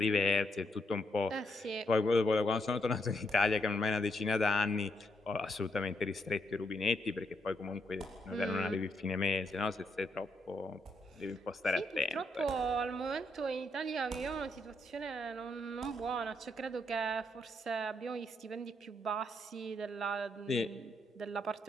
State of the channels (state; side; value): normal; both; correlation 0.78